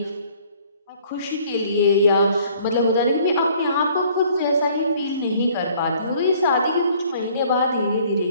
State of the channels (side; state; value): both; inverted; correlation -0.58